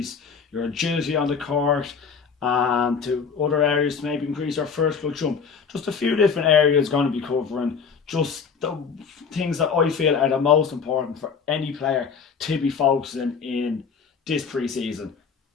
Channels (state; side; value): quieter; right; 5.9 dB